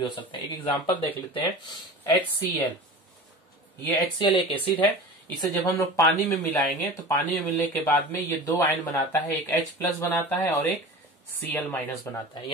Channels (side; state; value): both; normal; correlation 0.35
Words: हो सकता है। एक एग्जांपल देख लेते हैं, HCl। ये HCl एक एसिड है, इसे जब हम लोग पानी में मिलाएंगे तो पानी में मिलने के बाद में ये दो आयन बनाता है, एक H प्लस बनाता है और एक Cl माइनस बनाता है।